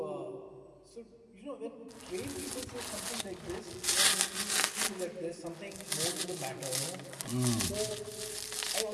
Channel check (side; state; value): both; identical; correlation 1.00